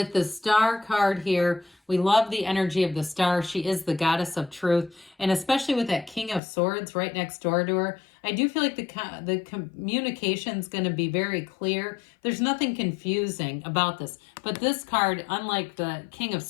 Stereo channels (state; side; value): drops out; right; at 6.4 s